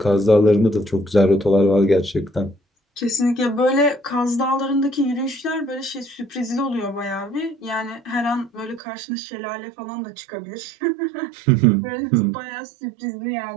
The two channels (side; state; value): left; drops out; at 8.8 s